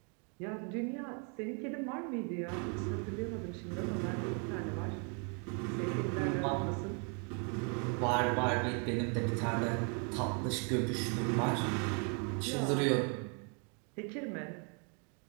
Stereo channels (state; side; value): quieter; left; 38.6 dB